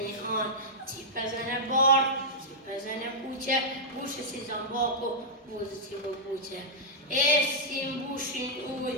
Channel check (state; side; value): normal; both; correlation -0.09